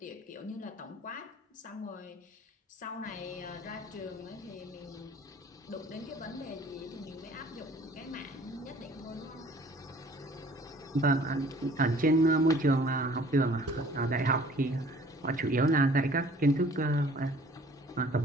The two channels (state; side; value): normal; both; correlation 0.52